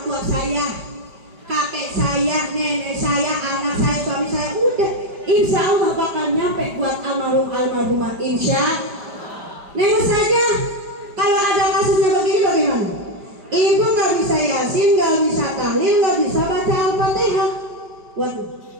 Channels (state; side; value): late; left; 5.0 ms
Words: tua saya, kakek saya, nenek saya, anak saya, suami saya. Udah, insya Allah bakal nyampe buat almarhumah. Insya Neng saja. Kalau ada kasusnya begini bagaimana? Ibu nggak bisa Yasin, nggak bisa tahlil, nggak bisa baca Al-Fatihah. Waduh,